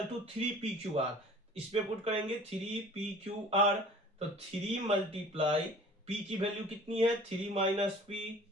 to 3PQR। इस पे पुट करेंगे 3PQR। तो 3 मल्टीप्लाई P की वैल्यू कितनी है 3 माइनस P,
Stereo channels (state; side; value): normal; both; correlation 0.47